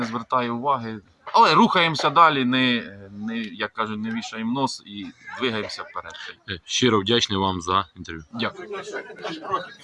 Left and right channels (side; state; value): both; identical; correlation 1.00